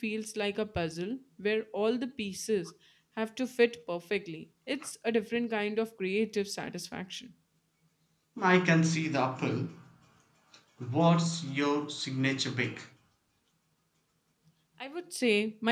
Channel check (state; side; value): identical; both; correlation 1.00